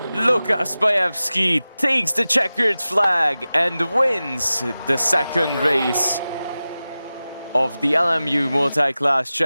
Lukas Bayevsky takes the checkered flag and wins the second race of the LMU Multiclass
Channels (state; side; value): inverted; both; correlation -0.95